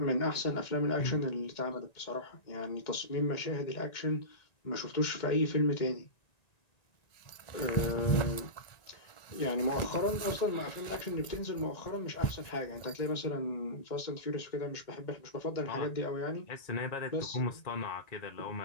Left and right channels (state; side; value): late; right; 1.9 ms